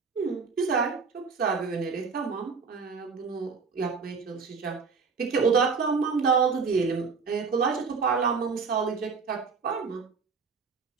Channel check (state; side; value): quieter; left; 5.2 dB